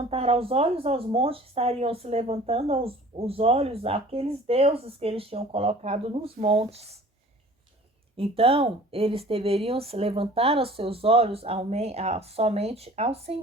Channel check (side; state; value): both; normal; correlation 0.47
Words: os olhos aos montes, estariam se levantando os olhos àqueles deuses que eles tinham colocado nos montes. Então, eles deveriam se levantar os seus olhos somente ao